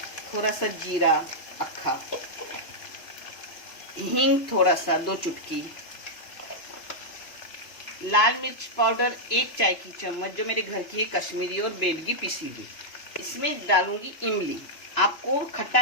थोड़ा सा जीरा अक्खा, हींग थोड़ा सा 2 चुटकी, लाल मिर्च पाउडर 1 चाय की चम्मच, जो मेरे घर की है, कश्मीरी और बेडगी पिसी हुई। इसमें डालूंगी इमली। आपको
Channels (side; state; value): right; late; 2.9 ms